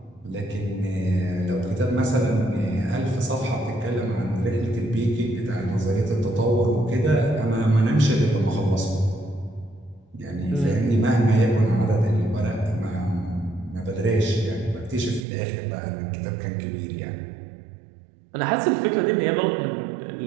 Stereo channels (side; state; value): left; drops out; at 15.2 s